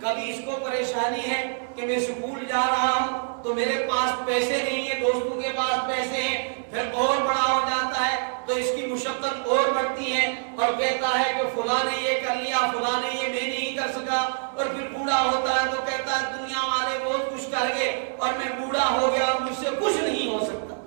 اس کو پریشانی ہے کہ میں سکول جا رہا ہوں تو میرے پاس پیسے نہیں ہیں، دوستوں کے پاس پیسے ہیں. پھر اور بڑا ہو جاتا ہے تو اس کی مشقت اور بڑھتی ہے اور کہتا ہے کہ فلاں نے یہ کر لیا، فلاں نے یہ میں نہیں کر سکا. اور پھر بوڑھا ہوتا ہے تو کہتا ہے دنیا والے بہت کچھ کر گئے اور میں بوڑھا ہو گیا اور مجھ سے کچھ نہیں ہو سکتا.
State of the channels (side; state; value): left; silent; digital silence